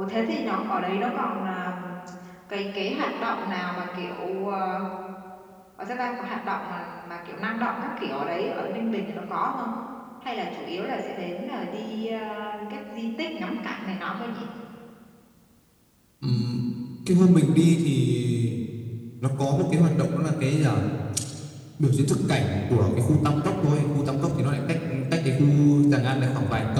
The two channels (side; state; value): both; identical; correlation 1.00